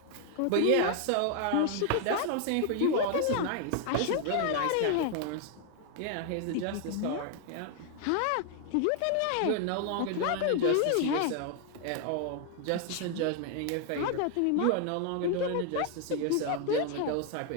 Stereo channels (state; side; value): different; both; correlation 0.00